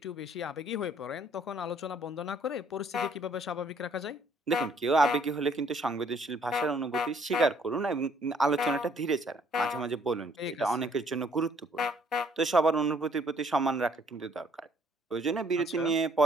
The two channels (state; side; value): normal; both; correlation 0.62